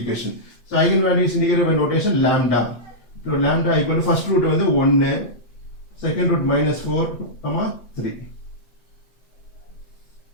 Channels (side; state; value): right; late; 8.4 ms